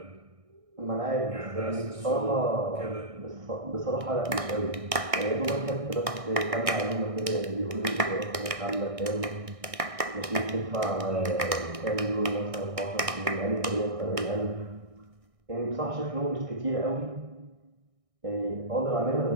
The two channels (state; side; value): late; left; 1.6 ms